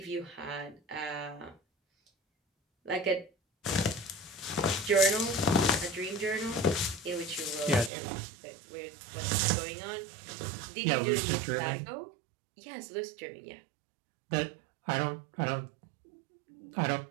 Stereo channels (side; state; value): left; drops out; at 7.9 s